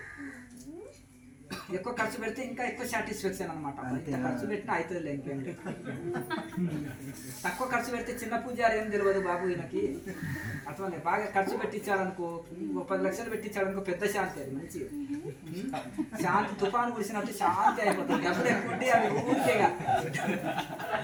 ఎక్కువ ఖర్చు పెడితే ఇంకా ఎక్కువ సాటిస్ఫాక్షన్ అనమాట. ఖర్చు పెట్టినా అవుతుంది ఇంకేం. తక్కువ ఖర్చు పెడితే చిన్న పూజారి ఏం తెలియదు బాబు ఈయనకి, అట్లా బాగా ఖర్చు పెట్టించాడనుకో, 10 లక్షలు పెట్టించాడనుకో, పెద్ద శాంతి, అది మంచిగా శాంతి. తుఫాను కురిసినట్టు శాంతి అయిపోతుంది. డబ్బులు ఎక్కువ ఉంటే అవి ఊరికేగా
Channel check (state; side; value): identical; both; correlation 1.00